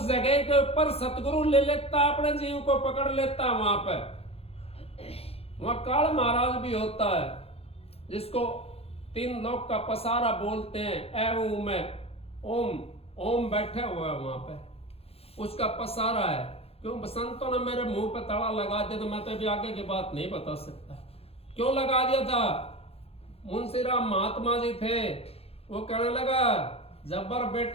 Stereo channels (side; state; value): right; late; 0.29 ms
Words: जगह के ऊपर सतगुरु ले लेता, अपने जीव को पकड़ लेता। वहां पर वहां काल महाराज भी होता है, जिसको तीन लोग का पसारा बोलते हैं। ए में ओम, ओम बैठे हुए है वहां पे, उसका पसारा है। क्यों? संतों ने मेरे मुंह पे ताला लगा दिया, तो मैं तो अभी आगे की बात नहीं बता सकता क्यों लगा दिया था। मुंशीराम महात्मा जी थे, वो कहने लगा जब्बर